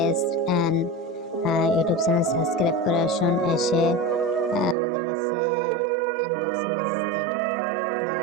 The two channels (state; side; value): drops out; left; at 4.8 s